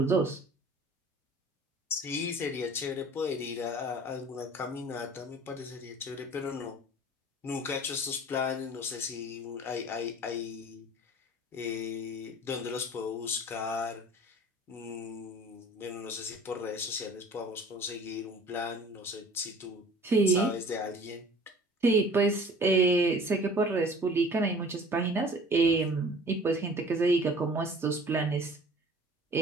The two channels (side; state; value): both; normal; correlation 0.47